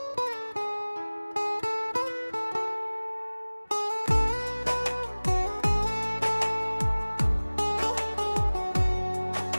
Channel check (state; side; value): inverted; both; correlation -1.00